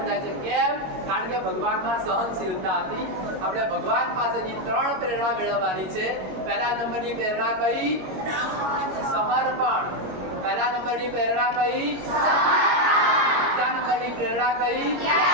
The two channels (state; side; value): late; left; 21 ms